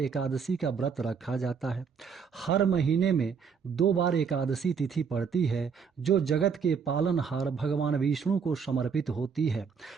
का व्रत रखा जाता है। हर महीने में 2 बार एकादशी तिथि पड़ती है जो जगत के पालनहार भगवान विष्णु को समर्पित होती है।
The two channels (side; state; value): left; quieter; 6.2 dB